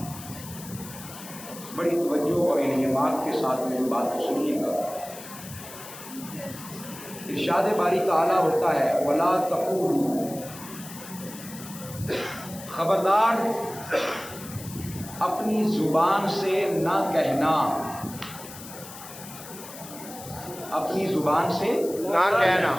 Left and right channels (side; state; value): left; noise; hiss, 14 dB below the sound